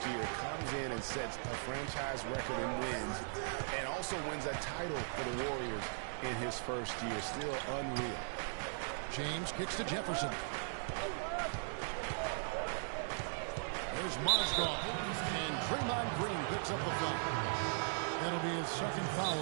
year. Comes in and sets a franchise record in wins and also wins a title for the Warriors in his first year. Still unreal. James kicks to Jefferson. There's Mozgov. And Draymond Green picks up the foul. That'll be his second foul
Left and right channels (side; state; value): left; silent; digital silence